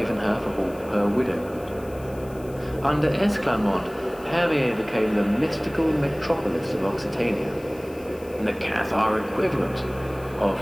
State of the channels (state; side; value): noise; left; hiss, 23 dB below the sound